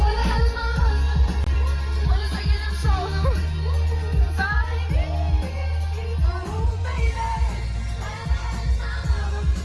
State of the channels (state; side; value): identical; both; correlation 1.00